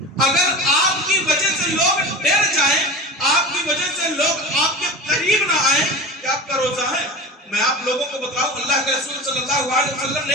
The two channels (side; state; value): both; normal; correlation 0.31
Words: اگر آپ کی وجہ سے لوگ ڈر جائیں، آپ کی وجہ سے لوگ آپ کے قریب نہ آئیں، کہ آپ کا روزہ ہے؟ میں آپ لوگوں کو بتاؤں، اللہ کے رسول صلی اللہ علیہ وسلم